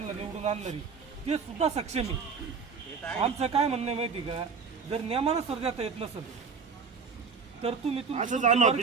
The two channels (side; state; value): left; quieter; 5.6 dB